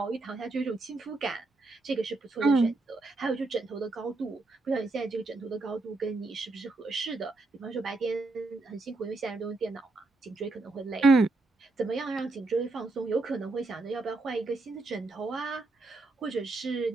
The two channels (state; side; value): quieter; left; 3.3 dB